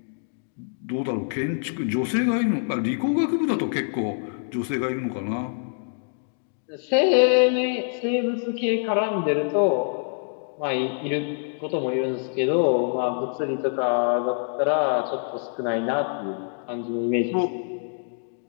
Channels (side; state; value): right; silent; digital silence